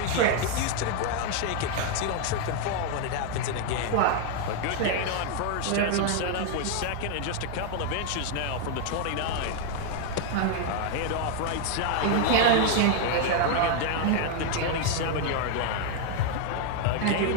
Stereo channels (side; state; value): both; different; correlation 0.00